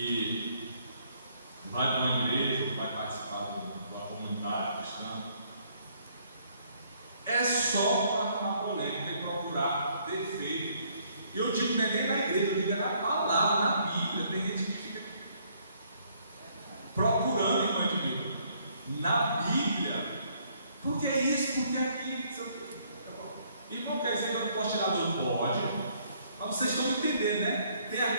vai para uma igreja, vai participar da comunidade cristã, é só para arrumar polêmica e procurar defeito. Eu digo, não é nem na igreja, eu digo é na palavra, na Bíblia. Tem gente que fica procurando, irmão de Deus, na Bíblia, porque é isso, porque é aquilo. Irmão, quer dizer que eu não posso tirar do pode, mas vocês estão me entendendo, né? Tem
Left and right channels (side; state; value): both; inverted; correlation -0.66